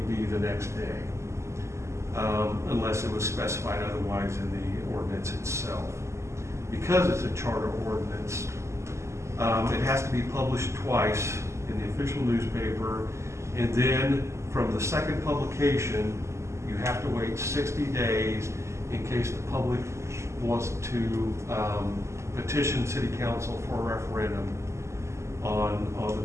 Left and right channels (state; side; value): late; left; 0.13 ms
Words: be the next day, unless it was specified otherwise in the ordinance itself. Because it's a charter ordinance, it has to be published twice in the official newspaper, and then from the second publication, you have to wait 60 days in case the public wants to petition city council for a referendum on